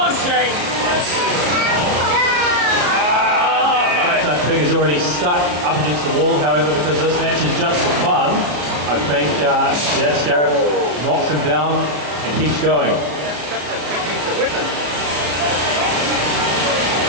Duck Pig is already stuck up against the wall, however, because this match is just for fun, I think, Scarab knocks him down and keeps going.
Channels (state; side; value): late; left; 34 ms